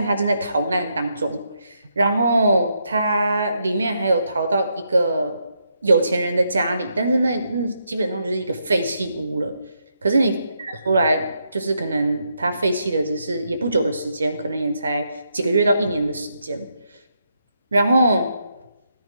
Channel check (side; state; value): both; inverted; correlation -0.79